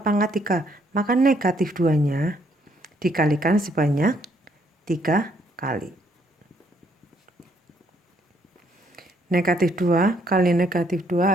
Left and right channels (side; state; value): both; normal; correlation 0.69